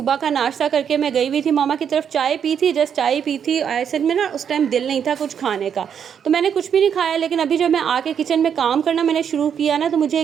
का नाश्ता करके मैं गई हुई थी मामा की तरफ, चाय पी थी, जस्ट चाय पी थी। ऐसे में ना उस टाइम दिल नहीं था कुछ खाने का, तो मैंने कुछ भी नहीं खाया। लेकिन अभी जब मैं आके किचन में काम करना मैंने शुरू किया ना, तो मुझे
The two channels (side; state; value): left; quieter; 8.0 dB